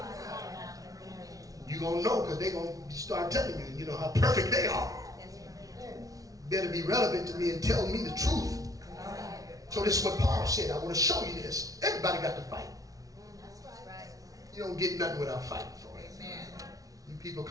You're going to know, because they're going to start telling you, you know, how perfect they are. Better be relevant to me and tell me the truth. So this is what Paul said. I want to show you this. Everybody got to fight. You don't get nothing without fighting for it. You people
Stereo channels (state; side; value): late; left; 0.17 ms